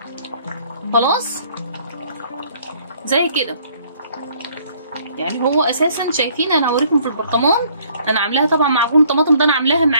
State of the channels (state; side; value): inverted; both; correlation -0.61